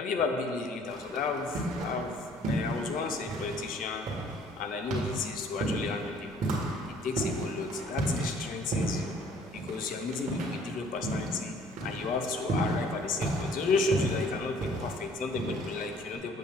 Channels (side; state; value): both; normal; correlation 0.56